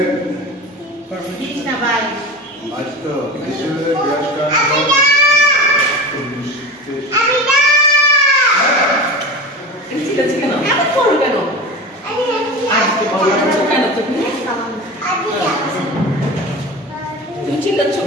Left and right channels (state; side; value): normal; both; correlation 0.29